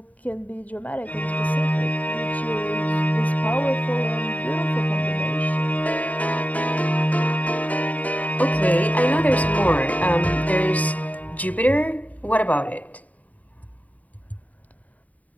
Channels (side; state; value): right; late; 0.072 ms